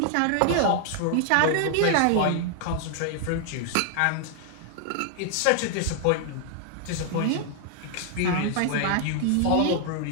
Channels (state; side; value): different; both; correlation 0.00